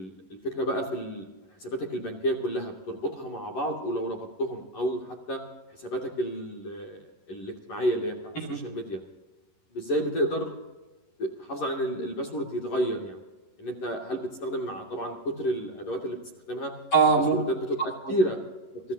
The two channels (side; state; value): right; late; 11 ms